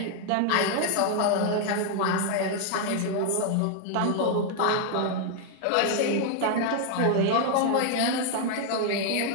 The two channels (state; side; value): different; both; correlation 0.00